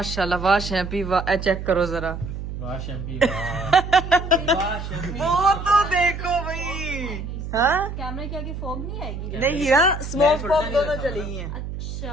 वाह शैम्पी वाह, चेक करो जरा। वाह शैम्पी वाह शैम्पी। वो तो देखो भाई। हाँ कैमरा के आगे फॉग नहीं आएगी? नहीं यार स्मोक फॉग दोनों चली हैं।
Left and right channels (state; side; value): noise; right; hum, 7 dB below the sound